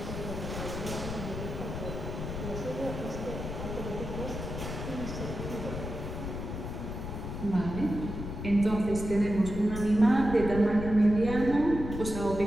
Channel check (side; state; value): left; noise; rumble, 6 dB below the sound